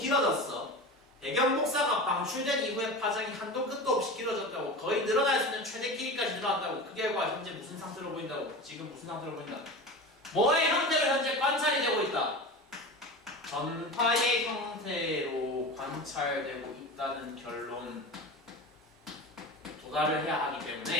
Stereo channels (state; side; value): normal; both; correlation 0.30